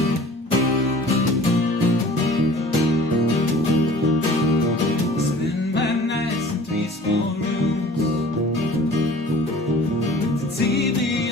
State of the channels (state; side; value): normal; both; correlation 0.46